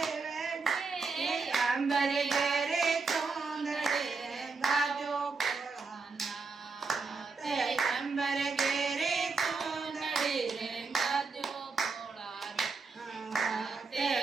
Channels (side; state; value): left; quieter; 4.5 dB